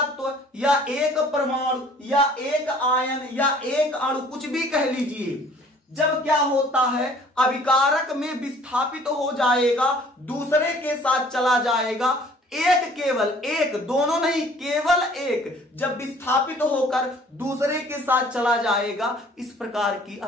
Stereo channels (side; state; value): both; normal; correlation 0.54